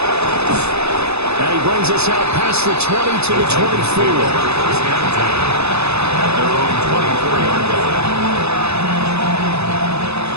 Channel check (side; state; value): left; late; 0.80 ms